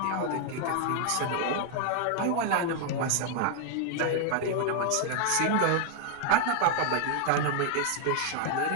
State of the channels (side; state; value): both; different; correlation 0.00